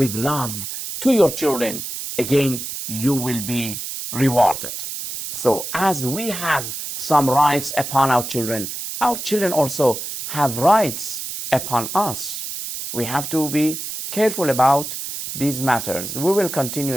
love to your children, again, you will be rewarded. So as we have some rights upon our children also have rights upon us. We have to be careful about these matters. We will continue,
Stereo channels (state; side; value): noise; right; hiss, 7 dB below the sound